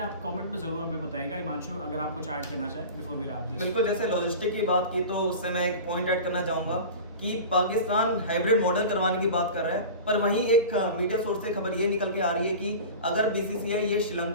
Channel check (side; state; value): both; inverted; correlation -0.34